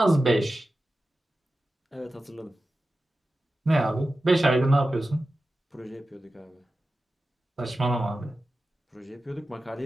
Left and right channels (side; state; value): both; normal; correlation 0.93